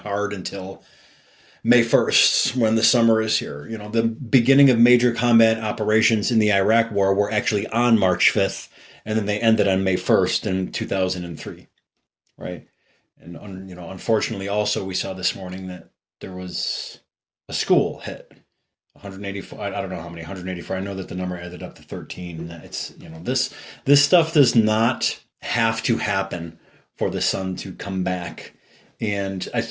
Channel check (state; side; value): identical; both; correlation 1.00